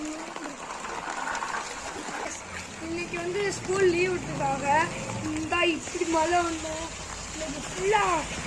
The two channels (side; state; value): both; identical; correlation 1.00